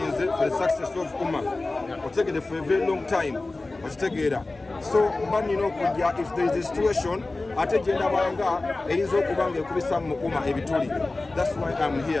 for the success of Wuma otegedde for a very long time okitegeera so mba nina okujja if there is a situation ate gye ndabanga eyinza okuba nga ekubisa mu Wuma ebituli that's why I'm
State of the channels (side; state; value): right; quieter; 3.2 dB